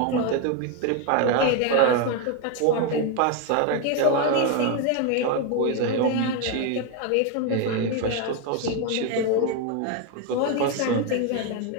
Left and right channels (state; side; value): different; both; correlation 0.02